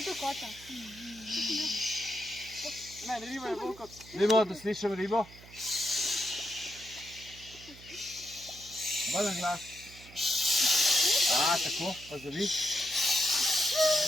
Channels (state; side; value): noise; right; hum, 20 dB below the sound